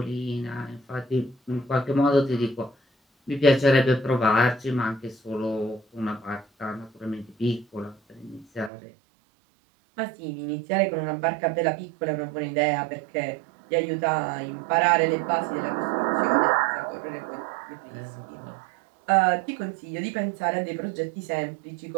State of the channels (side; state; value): left; drops out; at 8.7 s